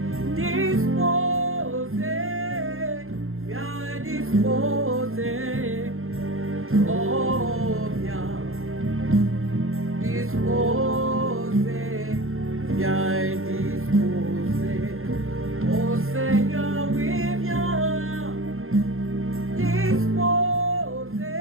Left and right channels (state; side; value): late; left; 0.61 ms